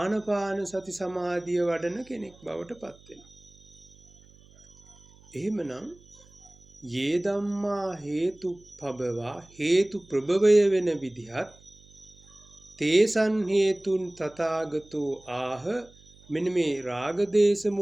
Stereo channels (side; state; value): right; noise; hum, 26 dB below the sound